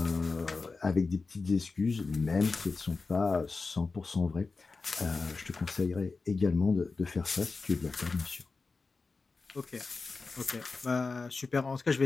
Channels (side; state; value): right; quieter; 4.1 dB